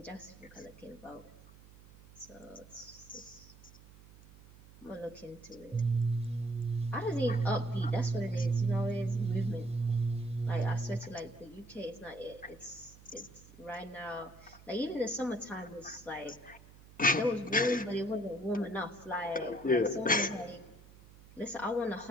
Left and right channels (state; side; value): noise; right; hum, 21 dB below the sound